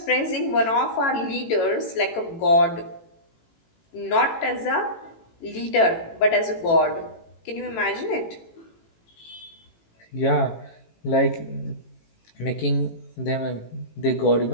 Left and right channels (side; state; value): right; late; 18 ms